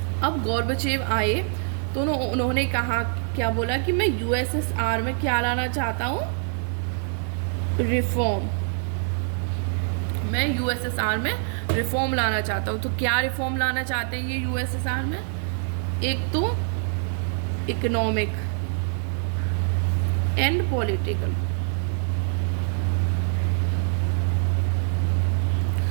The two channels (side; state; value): left; silent; 62 dB below the other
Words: अब गोर्बाचेव आए तो उन्होंने कहा, क्या बोला कि मैं यूएसएसआर में क्या लाना चाहता हूँ? रिफॉर्म। मैं यूएसएसआर में रिफॉर्म लाना चाहता हूँ। तो क्या रिफॉर्म लाना चाहते हैं ये यूएसएसआर में? एक तो इकोनॉमिक एंड पॉलिटिकल।